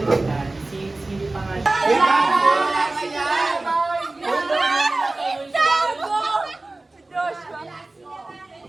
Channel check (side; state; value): left; quieter; 3.0 dB